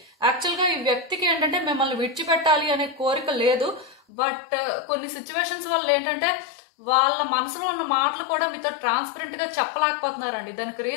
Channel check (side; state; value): right; drops out; at 4.0 s